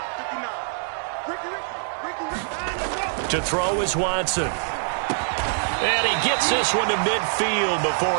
To throw is Watson. And he gets this one to midfield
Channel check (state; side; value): silent; left; digital silence